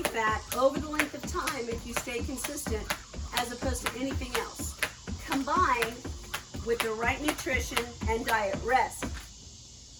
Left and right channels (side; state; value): both; identical; correlation 1.00